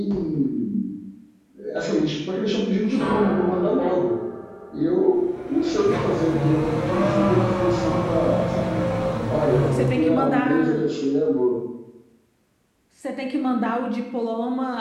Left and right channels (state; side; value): identical; both; correlation 1.00